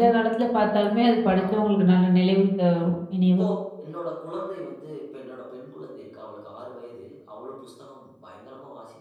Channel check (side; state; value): both; identical; correlation 1.00